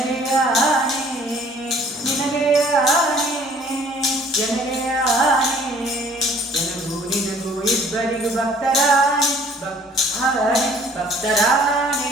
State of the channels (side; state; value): both; normal; correlation 0.55